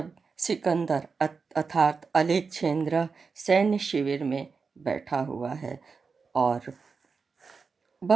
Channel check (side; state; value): left; quieter; 5.0 dB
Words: सिकंदर अर्थात अलेक्जेंद्र सैन्य शिविर में बैठा हुआ है और